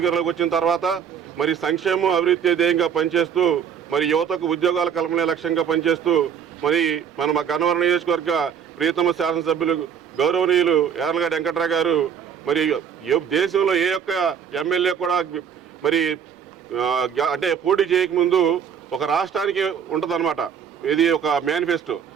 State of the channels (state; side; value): quieter; left; 7.8 dB